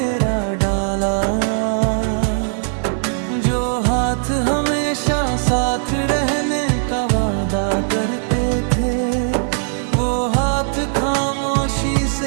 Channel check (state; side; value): silent; left; digital silence